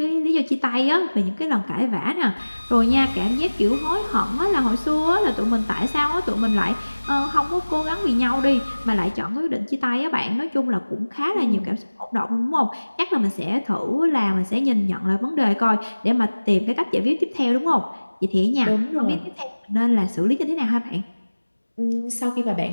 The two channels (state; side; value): inverted; both; correlation -1.00